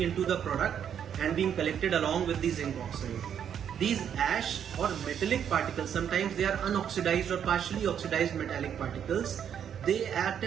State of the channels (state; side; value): quieter; left; 8.7 dB